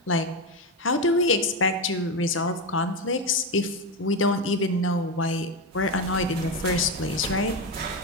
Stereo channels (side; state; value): both; normal; correlation 0.13